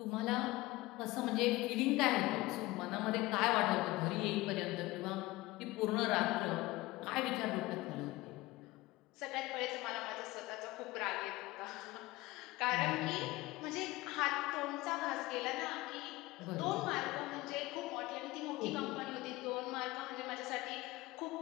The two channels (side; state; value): right; quieter; 19.8 dB